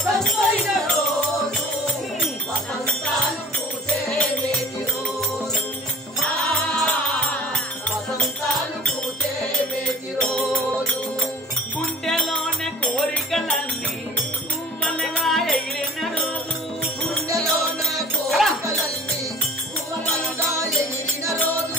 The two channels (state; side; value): normal; both; correlation 0.47